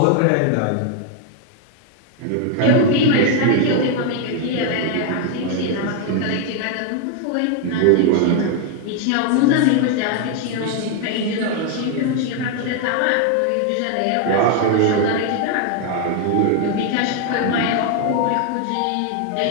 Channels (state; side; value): different; both; correlation 0.01